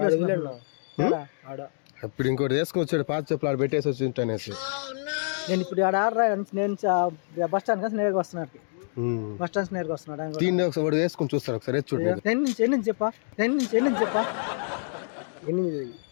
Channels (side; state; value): right; silent; digital silence